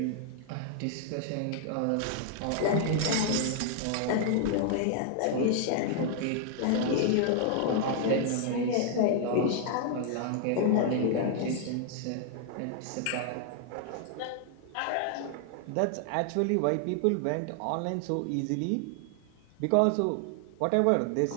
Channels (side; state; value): both; different; correlation 0.00